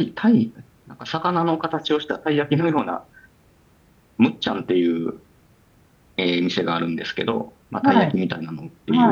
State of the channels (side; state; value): both; identical; correlation 1.00